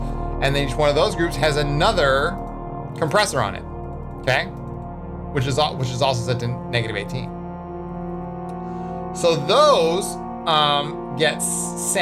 And then each one of those groups has another compressor on it, okay? Which is also set to -18. So those get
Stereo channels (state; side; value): identical; both; correlation 1.00